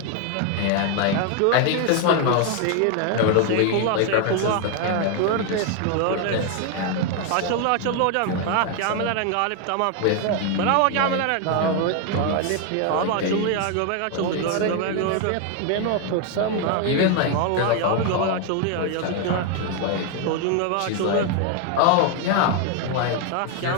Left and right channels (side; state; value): both; different; correlation 0.01